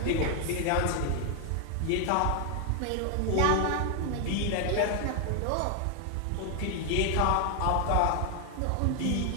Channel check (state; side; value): different; both; correlation 0.01